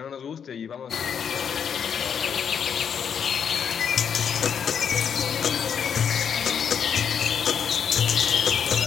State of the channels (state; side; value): quieter; right; 7.5 dB